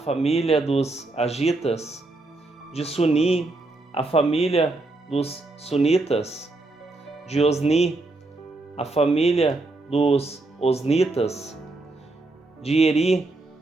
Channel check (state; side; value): quieter; left; 3.1 dB